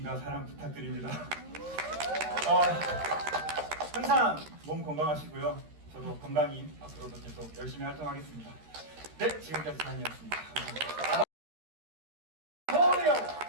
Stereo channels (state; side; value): late; left; 13 ms